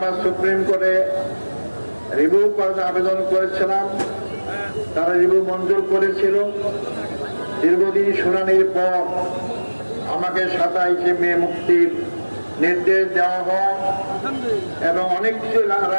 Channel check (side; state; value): both; inverted; correlation -1.00